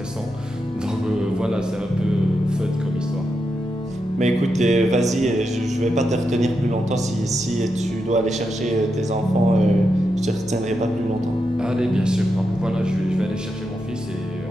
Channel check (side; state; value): both; normal; correlation 0.86